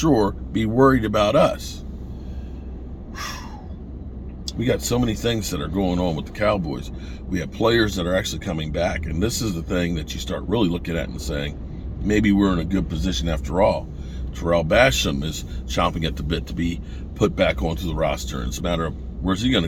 be worried about us. We got so many things that are going on with the Cowboys. We have players that are actually coming back. And this is the thing that you start really looking at and saying, maybe we're in a good position after all. Terrell Basham is chomping at the bit to be put back onto the roster. And it's a matter of where's he going to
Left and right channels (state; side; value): identical; both; correlation 1.00